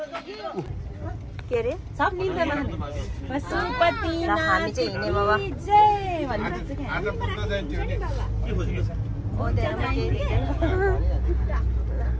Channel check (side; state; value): both; identical; correlation 1.00